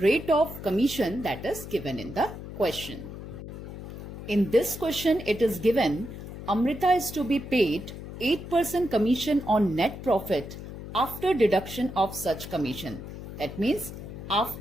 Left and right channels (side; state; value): left; noise; hum, 11 dB below the sound